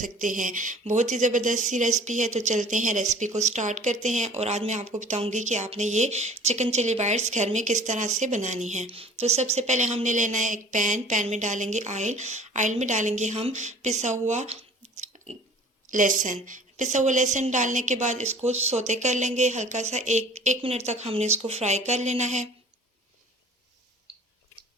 हैं। बहुत ही ज़बरदस्त सी रेसिपी है। तो चलते हैं रेसिपी को स्टार्ट करते हैं और आज मैं आपको बताऊंगी कि आपने ये चिकन चिली बाइट्स घर में किस तरह से बनानी है। तो सबसे पहले हमने लेना है एक पैन में डालेंगे ऑयल में डालेंगे हम पिसा हुआ लहसुन डालने के बाद इसको सोते कर लेंगे हल्का सा। एक मिनट तक हमने इसको फ्राई कर लेना है।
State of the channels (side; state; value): both; normal; correlation 0.47